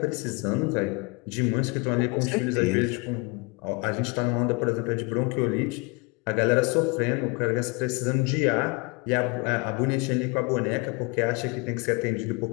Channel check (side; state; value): right; quieter; 28.9 dB